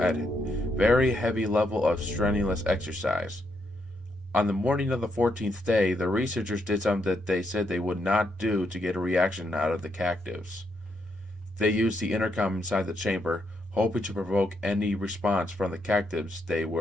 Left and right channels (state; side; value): normal; both; correlation 0.78